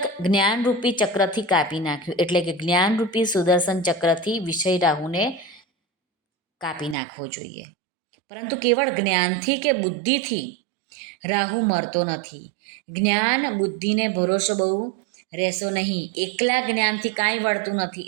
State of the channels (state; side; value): drops out; left; at 7.0 s